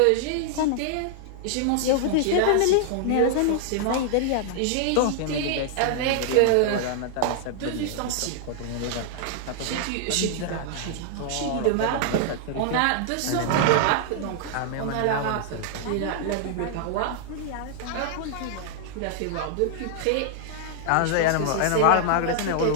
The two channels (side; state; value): both; different; correlation -0.01